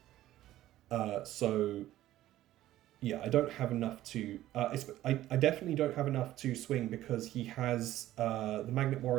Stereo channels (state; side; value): quieter; left; 14.4 dB